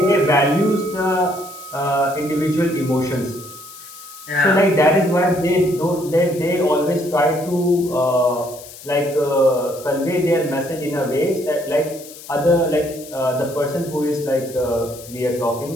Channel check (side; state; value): left; noise; hiss, 17 dB below the sound